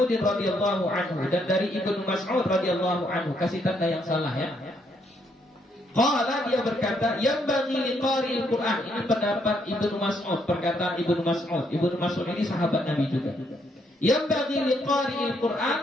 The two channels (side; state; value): both; normal; correlation 0.73